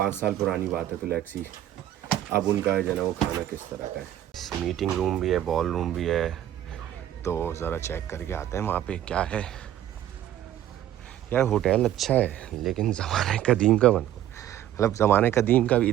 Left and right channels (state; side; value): quieter; left; 12.1 dB